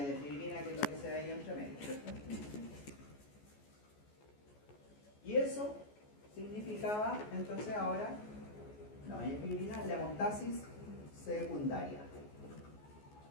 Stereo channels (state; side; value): late; right; 14 ms